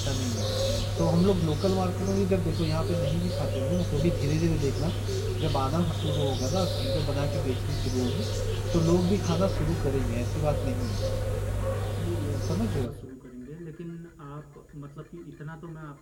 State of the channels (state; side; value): identical; both; correlation 1.00